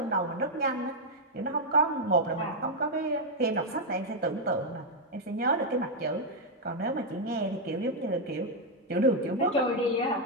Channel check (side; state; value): both; normal; correlation -0.01